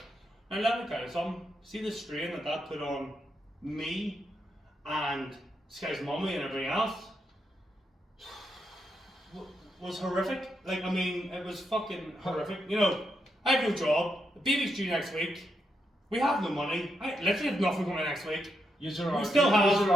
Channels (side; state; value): both; normal; correlation 0.82